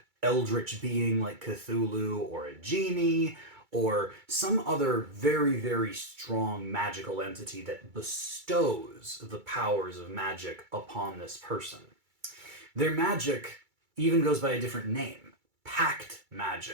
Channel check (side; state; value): left; late; 2.3 ms